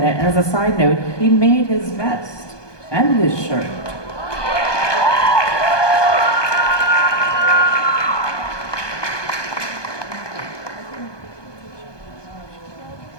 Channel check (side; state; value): right; late; 1.2 ms